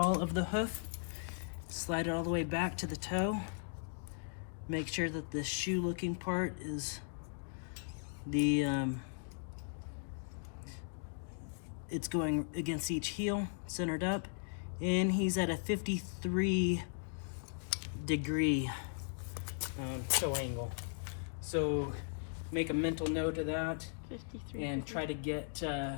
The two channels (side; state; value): right; silent; digital silence